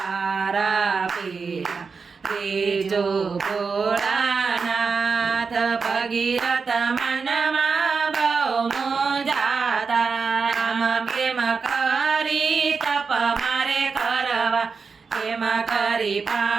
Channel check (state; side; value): quieter; left; 5.1 dB